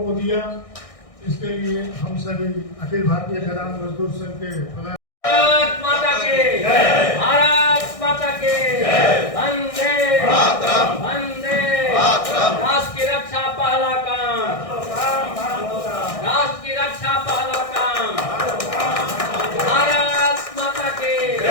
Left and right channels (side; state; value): right; late; 1.6 ms